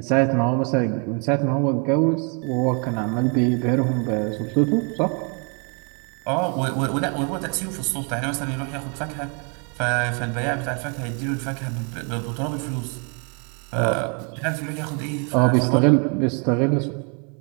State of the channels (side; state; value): left; quieter; 36.9 dB